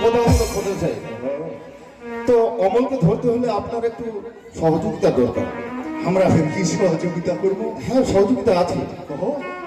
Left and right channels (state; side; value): identical; both; correlation 1.00